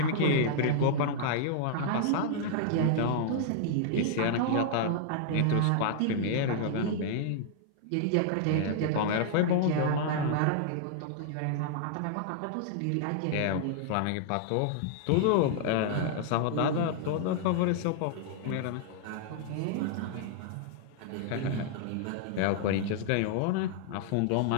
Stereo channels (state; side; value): different; both; correlation -0.01